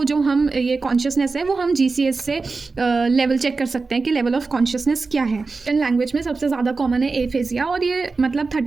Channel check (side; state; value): left; quieter; 4.1 dB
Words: जो हम ये कॉन्शियसनेस है वो हम जीसीएस से लेवल चेक कर सकते हैं कि लेवल ऑफ कॉन्शियसनेस क्या है। इन लैंग्वेज में सबसे ज़्यादा कॉमन है एफेजिया, और ये मतलब